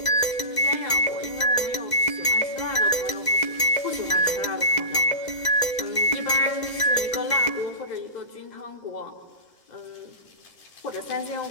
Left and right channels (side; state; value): right; late; 2.0 ms